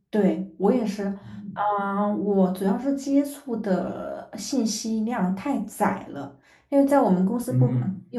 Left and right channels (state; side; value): identical; both; correlation 1.00